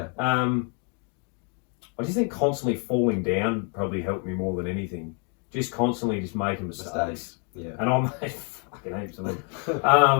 I just think constantly falling down probably helped me more than anything. Just constantly just making mistakes. Yeah. And I made fucking heaps of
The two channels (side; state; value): right; quieter; 38.9 dB